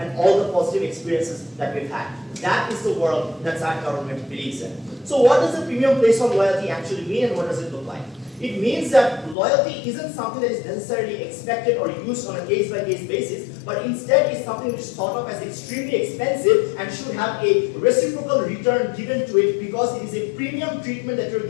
all the positive experiences that we've had. That is the world that our government believes in. So what does a premium placed on loyalty actually mean, and what does it look like? It means that loyalty isn't something that is necessarily expected or used on a case-by-case basis, but instead is something which is thought of as extremely expensive and should have a reciprocal return given to it because it is a premium treatment that you're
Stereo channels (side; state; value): right; drops out; at 9.3 s